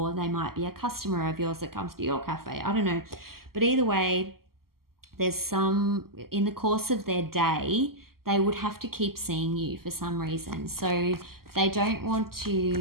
they might be a customer of yours that comes to your cafe. I don't know. But either way, there's some, in the course of their day, they would have to keep seeing you for some reason. So they don't want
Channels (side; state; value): left; late; 0.93 ms